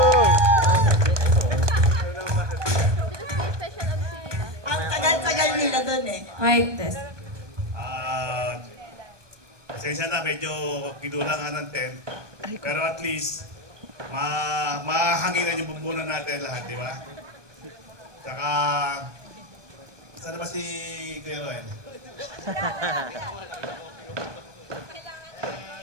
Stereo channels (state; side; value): late; left; 1.2 ms